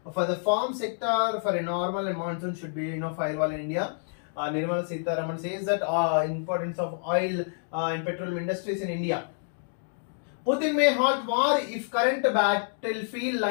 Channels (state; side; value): silent; right; digital silence